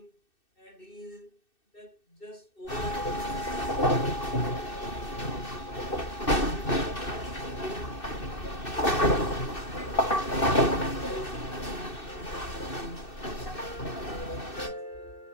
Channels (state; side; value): late; right; 2.6 ms